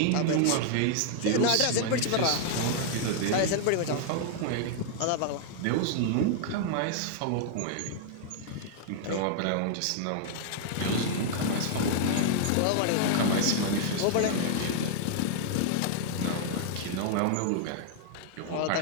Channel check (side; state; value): both; different; correlation -0.01